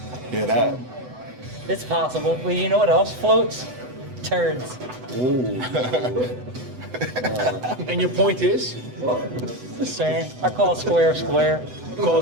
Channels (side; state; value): left; late; 8.0 ms